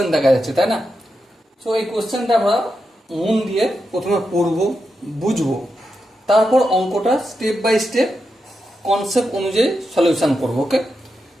দেখা যাচ্ছে, তাই না? সো এই কোশ্চেনটা আমরা মন দিয়ে প্রথমে পড়বো, বুঝবো, তারপর অঙ্কটা স্টেপ বাই স্টেপ কনসেপ্ট অনুযায়ী সলিউশন করবো। ওকে,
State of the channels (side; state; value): both; normal; correlation 0.87